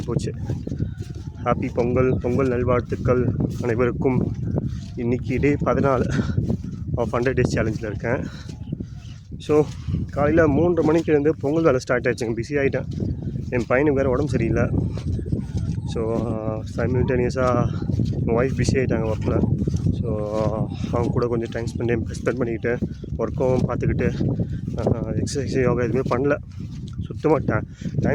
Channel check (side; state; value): both; identical; correlation 1.00